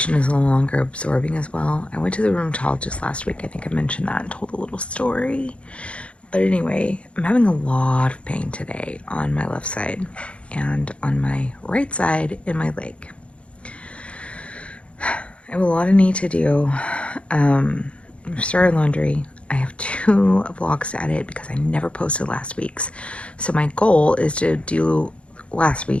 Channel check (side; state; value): right; late; 0.060 ms